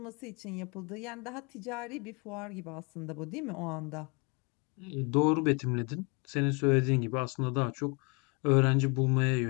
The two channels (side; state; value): right; quieter; 31.7 dB